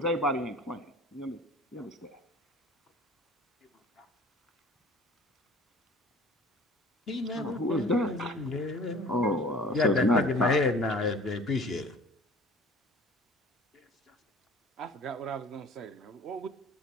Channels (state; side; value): normal; both; correlation 0.46